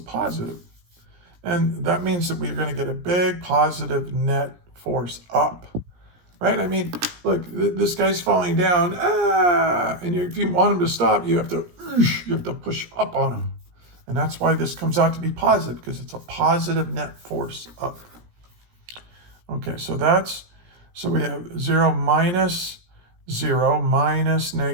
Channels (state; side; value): late; left; 17 ms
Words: positive. And that means that we're going to get a big positive net force up, right? I mean, look, this guy's falling down, and if you want him to stop, you have to push up on him. And that's why this comes out to be positive, because it's a positive net force up. Okay, so we have 0 minus